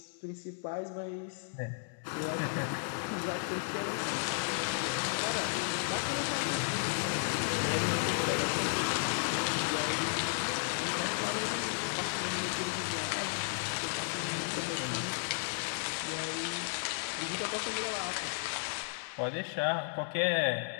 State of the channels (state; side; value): silent; right; digital silence